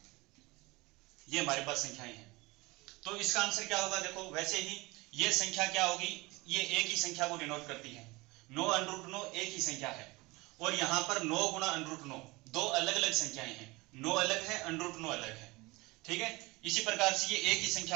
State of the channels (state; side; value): quieter; left; 22.8 dB